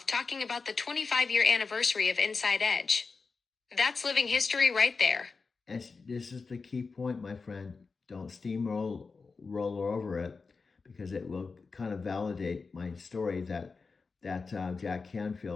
talking about the 25-year anniversary of Inside Edge. That's living history right there. And this is the key point, my friend. Don't steamroll over it, because it will kind of validate my story that Jack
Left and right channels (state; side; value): quieter; right; 4.5 dB